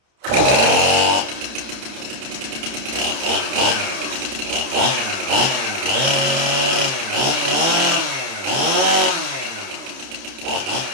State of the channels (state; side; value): late; left; 30 ms